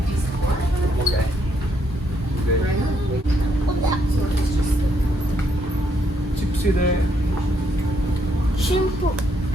ಚಿಪ್ಸ್ ಇದೆ, Shampoo.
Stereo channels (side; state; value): both; normal; correlation 0.74